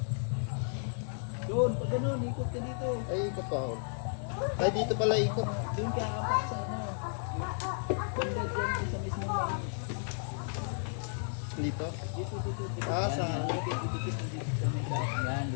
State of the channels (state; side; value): silent; right; digital silence